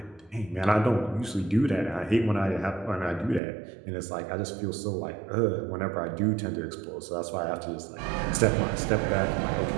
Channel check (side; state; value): left; drops out; at 3.4 s